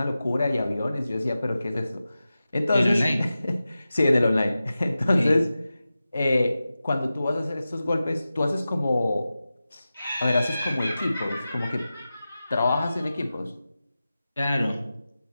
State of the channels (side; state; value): both; inverted; correlation -0.94